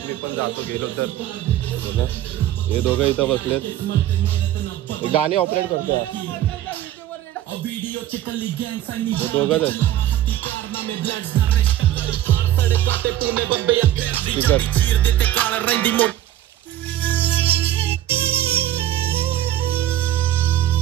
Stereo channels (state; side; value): quieter; left; 12.8 dB